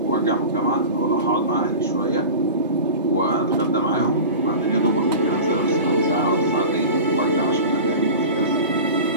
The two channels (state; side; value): inverted; both; correlation -0.33